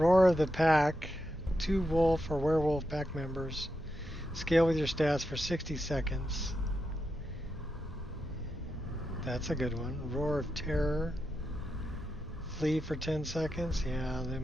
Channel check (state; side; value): normal; both; correlation 0.87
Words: of the Pack. 2 wolf or werewolf pack members. Scale with your stats for 60 seconds. That's a good one. Roar of Terror. Flee for 10 seconds. Yeah, they